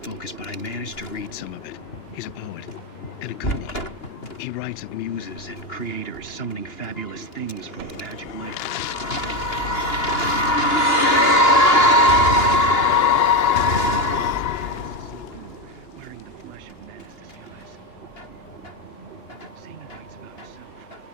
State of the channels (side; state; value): right; late; 2.9 ms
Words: but I managed to read some of it. He's a poet, and a good one. He writes of muses and creators summoning fabulous things from the magic lake.